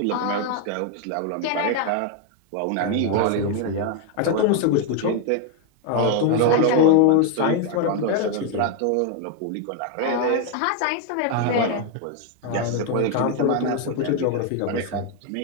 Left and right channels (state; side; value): different; both; correlation 0.01